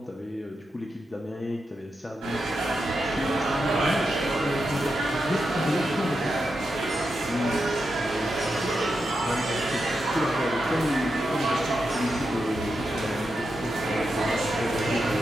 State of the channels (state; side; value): normal; both; correlation 0.87